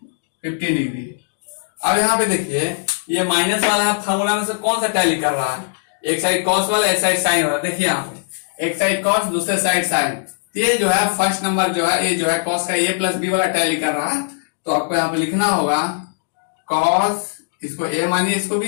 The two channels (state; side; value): silent; right; digital silence